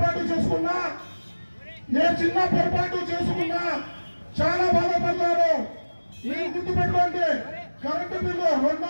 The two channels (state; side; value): inverted; both; correlation -1.00